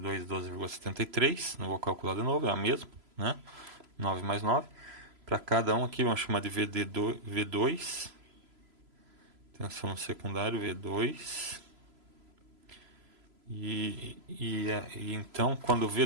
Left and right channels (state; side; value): late; left; 3.0 ms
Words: 2, 12,73. Não vou calcular de novo, é a mesma, né? 9 mais 9. Para cada um aqui, vamos chamar de V2. Tensão no secundário, V2. E então, quando o